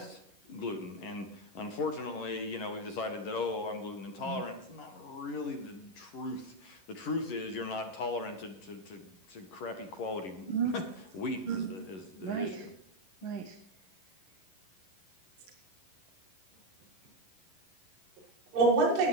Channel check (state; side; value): late; right; 11 ms